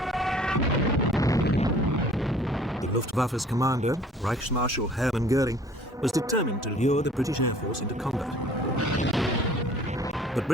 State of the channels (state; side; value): normal; both; correlation 0.53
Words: The Luftwaffe's commander, Reichsmarschall Hermann Goering, was determined to lure the British Air Force into combat. But